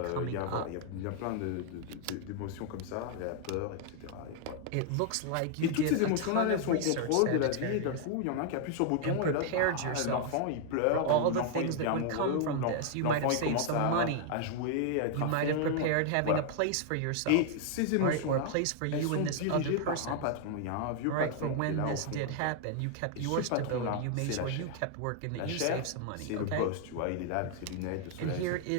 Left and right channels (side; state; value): both; different; correlation 0.00